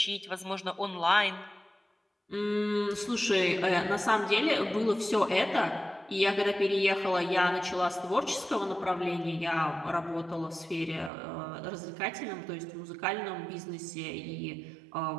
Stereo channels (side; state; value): left; drops out; at 11.1 s